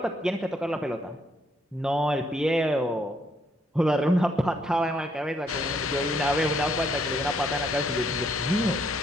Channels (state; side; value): normal; both; correlation 0.71